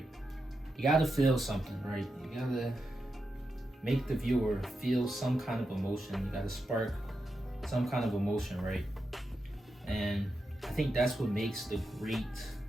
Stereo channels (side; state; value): both; normal; correlation 0.87